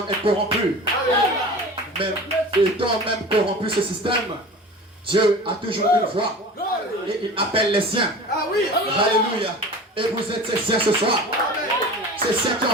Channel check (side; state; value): both; normal; correlation 0.36